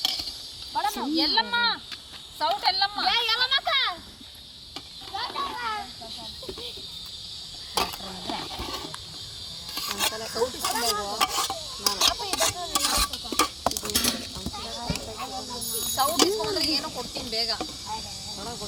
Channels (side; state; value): both; identical; correlation 1.00